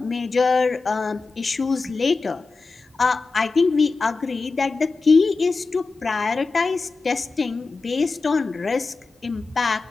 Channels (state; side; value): quieter; right; 4.0 dB